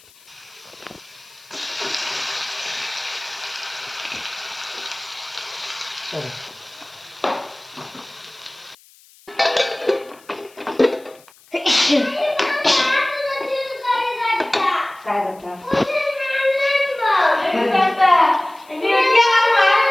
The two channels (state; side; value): noise; left; hiss, 27 dB below the sound